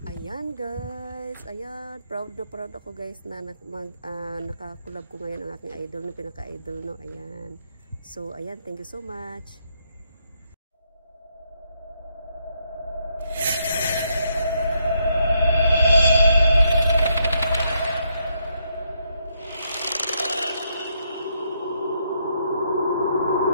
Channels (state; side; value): inverted; both; correlation -0.76